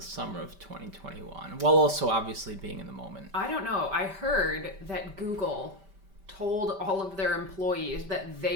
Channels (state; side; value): late; left; 5.1 ms